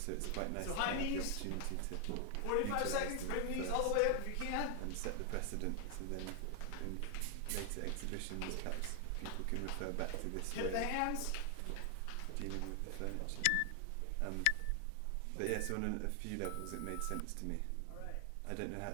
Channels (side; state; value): both; different; correlation 0.00